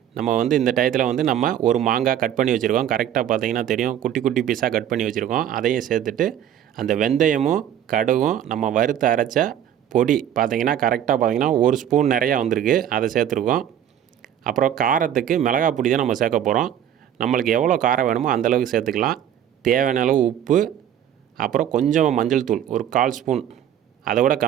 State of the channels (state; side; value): quieter; left; 10.2 dB